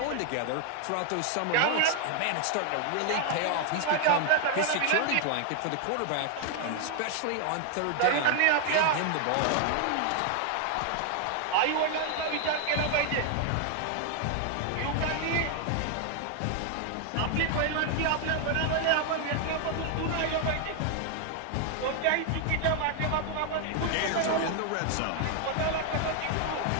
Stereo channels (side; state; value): both; different; correlation 0.00